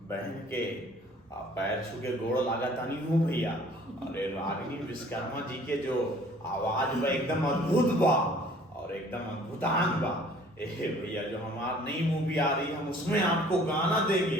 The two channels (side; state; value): both; normal; correlation 0.53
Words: बहन के पैर छू के गोड़ लागा तानी हूँ भैया। अरे रागिनी विश्वकर्मा जी के जो आवाज बा एकदम अद्भुत बा और एकदम अद्भुतांग बा। ए भैया जो हमारी नई मूवी आ रही है हम उसमें आपको गाना